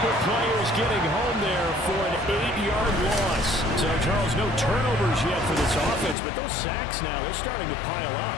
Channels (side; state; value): right; drops out; at 6.2 s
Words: players getting home there for an 8-yard loss. So, Charles, no turnovers yet for this offense, but those sacks now, they're starting to pile